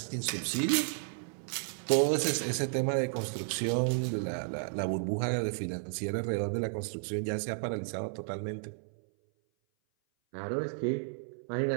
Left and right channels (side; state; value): left; silent; 56 dB below the other